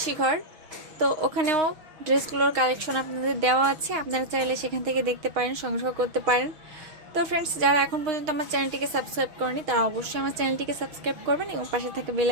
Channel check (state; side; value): late; left; 6.4 ms